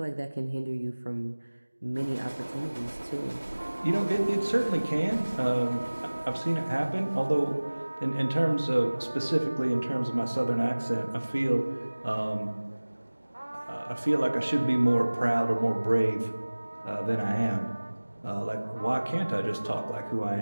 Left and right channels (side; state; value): both; inverted; correlation -1.00